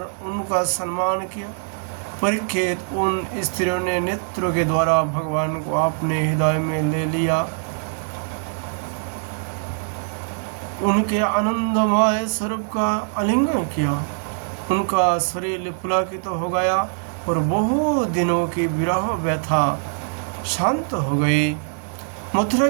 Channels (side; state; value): left; silent; digital silence